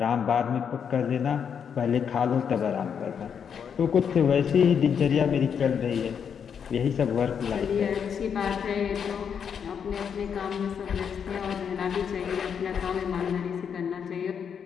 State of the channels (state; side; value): quieter; right; 7.3 dB